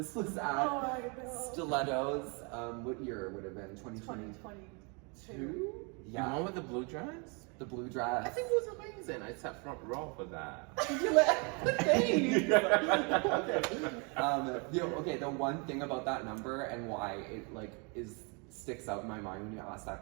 was at Stilettos. What year would it have been? 2022? Yeah. The one with the blue dress? The blue dress. I think it was amazing. I sat front row for that. The one thing about that number and why it sticks out in my mind when you ask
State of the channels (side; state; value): left; quieter; 33.1 dB